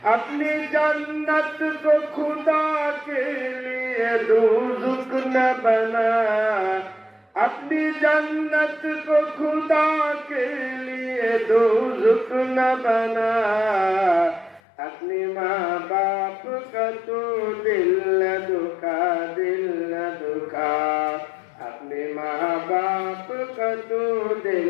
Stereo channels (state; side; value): drops out; right; at 14.6 s